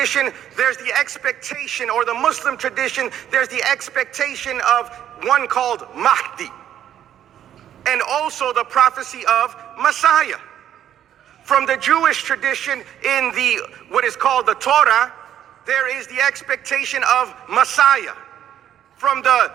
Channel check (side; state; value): left; quieter; 10.6 dB